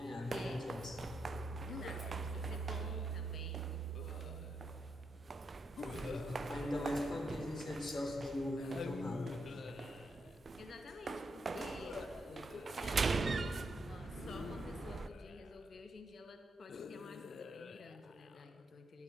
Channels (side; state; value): both; normal; correlation 0.81